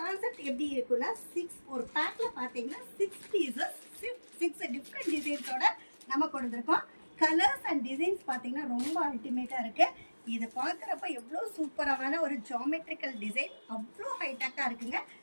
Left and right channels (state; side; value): inverted; both; correlation -1.00